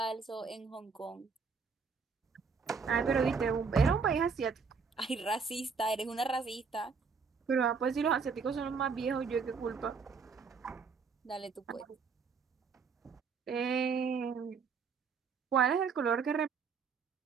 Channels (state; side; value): quieter; left; 5.4 dB